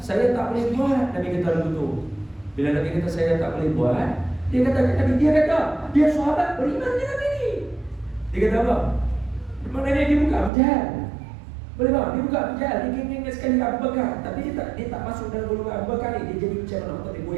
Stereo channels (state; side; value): drops out; left; at 10.5 s